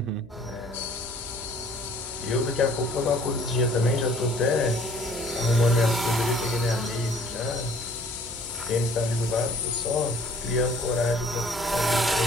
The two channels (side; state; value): left; noise; hum, 22 dB below the sound